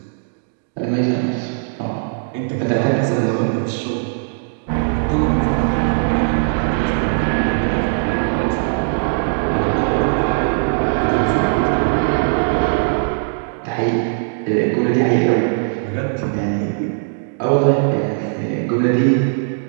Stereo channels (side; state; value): left; silent; digital silence